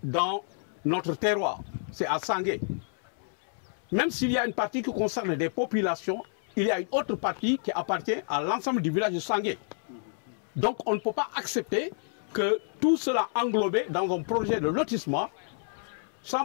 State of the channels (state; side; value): silent; right; 58 dB below the other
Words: dans notre terroir, c'est à Sangué. Même s'il y a une partie qui concerne des populations, il y a une autre partie qui appartient à l'ensemble du village de Sangué. Donc on ne peut pas accepter que tout cela englobé dans un projet de lotissement